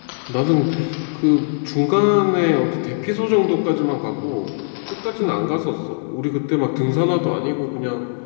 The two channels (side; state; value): right; silent; digital silence